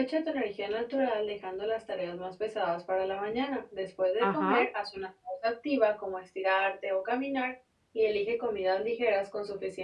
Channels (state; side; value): identical; both; correlation 1.00